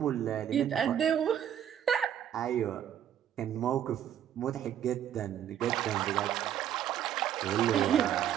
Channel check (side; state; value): left; quieter; 10.1 dB